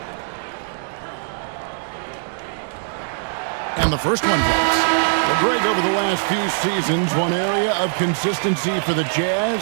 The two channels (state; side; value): silent; left; digital silence